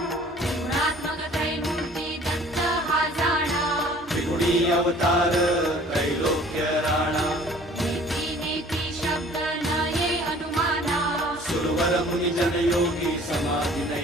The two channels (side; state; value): both; normal; correlation 0.51